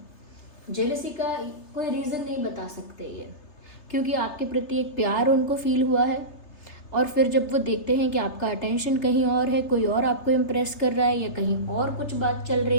जेलसी का कोई रीज़न नहीं बता सकते ये, क्योंकि आपके प्रति एक प्यार उनको फील हुआ है और फिर जब वो देखते हैं कि आपका अटेंशन कहीं और है, कोई और आपको इम्प्रेस कर रहा है या कहीं और कुछ बात चल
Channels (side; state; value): right; late; 3.3 ms